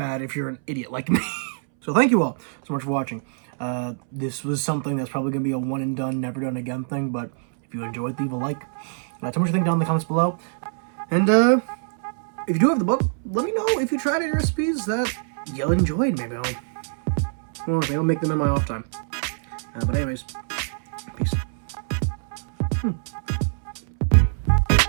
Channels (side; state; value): left; silent; 62 dB below the other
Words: if you're an idiot like me. So thank you all so much for watching. This was something that's probably going to be a one and done, never done again thing, but if you enjoyed, leave a like. Tell me what you think down in the comments below. And if you do have the book, let me know if you tried any recipes that you enjoyed. Maybe I'll make them in my off time. But anyways, peace.